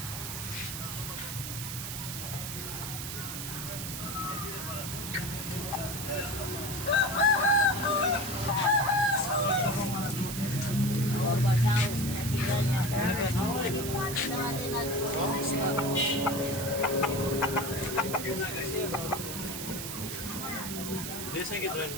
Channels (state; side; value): noise; right; hiss, 6 dB below the sound